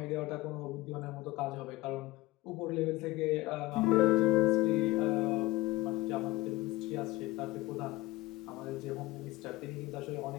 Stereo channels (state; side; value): quieter; right; 18.7 dB